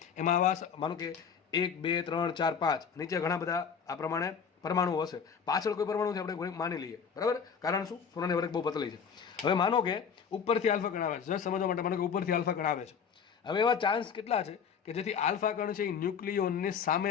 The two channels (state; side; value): quieter; right; 6.7 dB